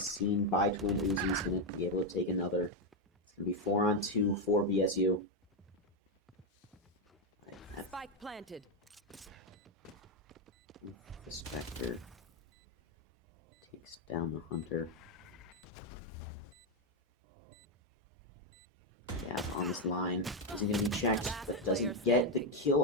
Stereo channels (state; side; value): normal; both; correlation 0.04